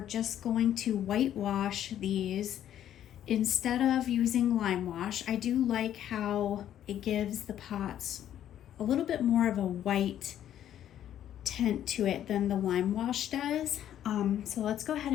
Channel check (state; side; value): quieter; right; 11.0 dB